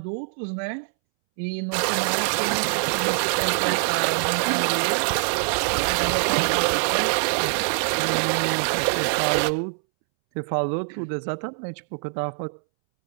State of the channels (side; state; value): left; silent; 63 dB below the other